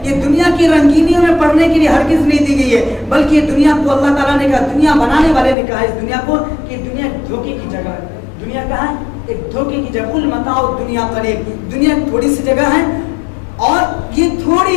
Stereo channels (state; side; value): drops out; right; at 5.6 s